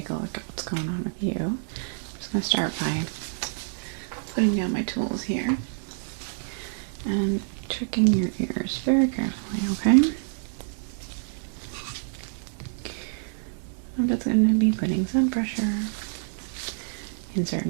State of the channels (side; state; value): left; silent; digital silence